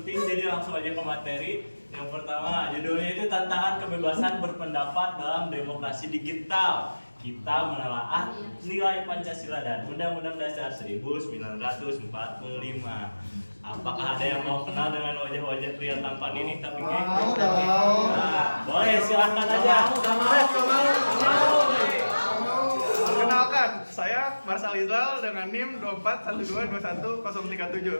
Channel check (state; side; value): inverted; both; correlation -1.00